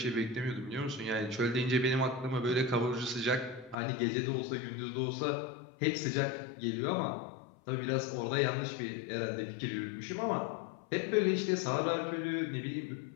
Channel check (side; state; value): right; drops out; at 3.8 s